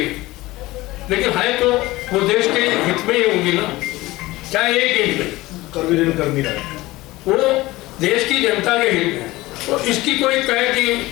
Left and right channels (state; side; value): quieter; right; 19.1 dB